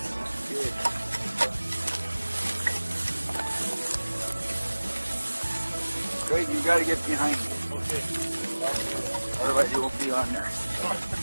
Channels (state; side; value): inverted; both; correlation -1.00